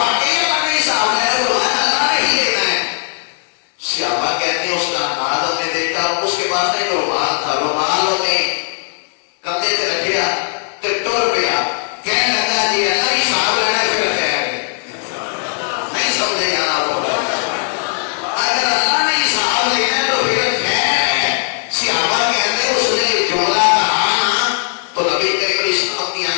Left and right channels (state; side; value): silent; right; 61 dB below the other